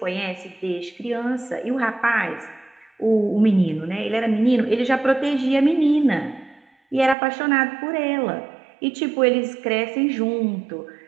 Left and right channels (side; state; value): left; drops out; at 7.2 s